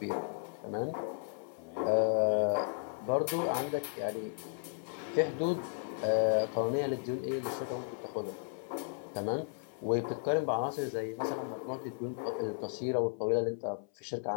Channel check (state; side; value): silent; right; 55 dB below the other